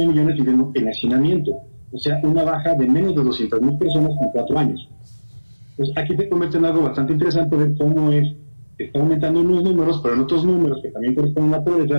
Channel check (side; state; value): both; inverted; correlation -1.00